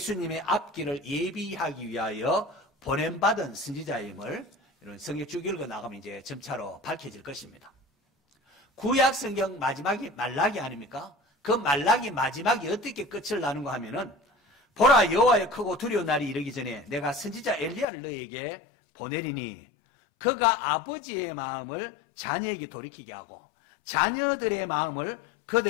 앞길을 예비하기 위하여 보냄받은 선지자임을 이런 성경 쭉 읽어 나가면 이제 점차로 밝혀질 것입니다. 구약 성경 마지막이 말라기 아닙니까? 그 말라기 마지막이 어떻게 끝을 나는가 하면은 보라 여호와의 크고 두려운 날이 이르기 전에 내가 선지자 엘리야를 너에게 보내리니 그가 아버지의 마음을 자녀에게 돌이키게 하고 자녀들의 마음을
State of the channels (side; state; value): right; drops out; at 17.9 s